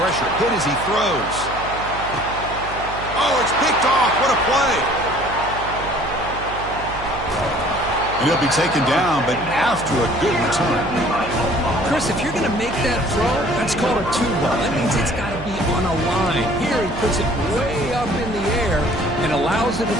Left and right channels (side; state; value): right; noise; hum, 12 dB below the sound